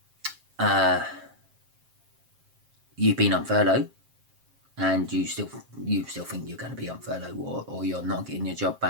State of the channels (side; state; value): left; late; 7.5 ms